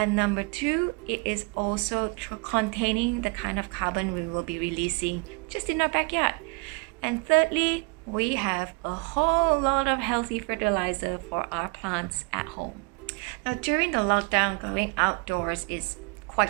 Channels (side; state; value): left; quieter; 31.0 dB